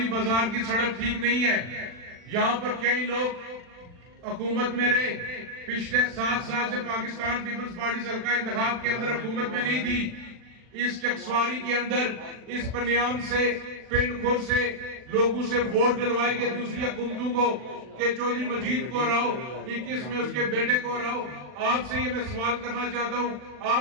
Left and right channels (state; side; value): late; left; 40 ms